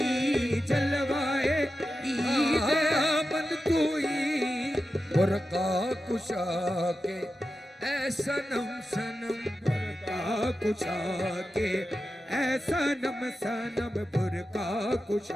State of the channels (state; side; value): normal; both; correlation 0.91